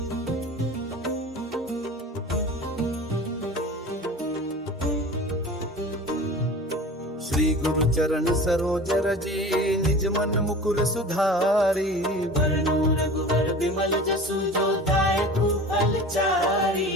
श्री गुरु चरण सरोज रजी, निज मन मुकुर सुधारी। वरनु रघुवर विमल जसु, जो दायकु फल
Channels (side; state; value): both; normal; correlation 0.37